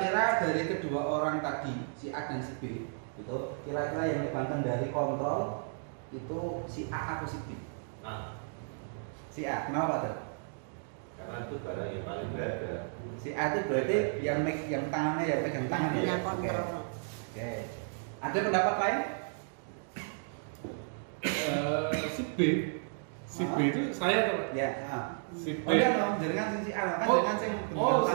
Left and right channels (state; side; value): silent; left; digital silence